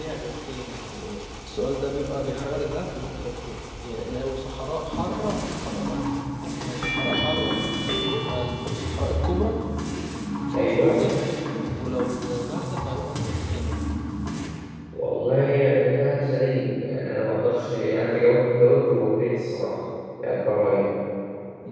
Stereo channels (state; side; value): identical; both; correlation 1.00